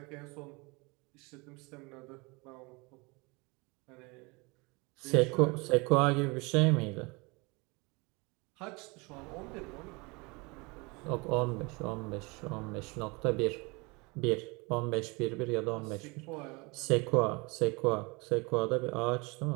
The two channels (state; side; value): quieter; left; 27.2 dB